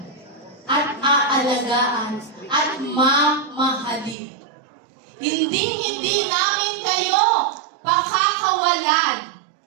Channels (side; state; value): left; drops out; at 4.2 s